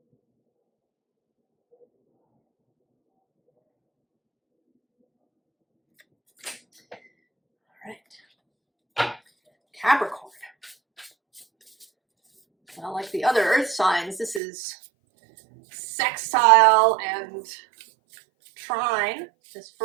All right. Capricorn. Well, like the other earth signs, this is sextile and trine. This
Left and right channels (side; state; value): left; drops out; at 14.4 s